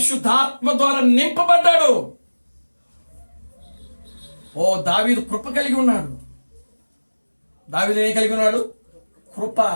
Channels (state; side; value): inverted; both; correlation -1.00